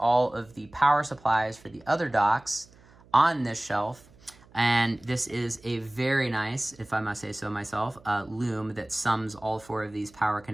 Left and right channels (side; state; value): right; noise; hum, 26 dB below the sound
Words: of the power supplies for the other docks on this shelf. And this is a very nice, if I must say so myself, loom that sums all 4 of these power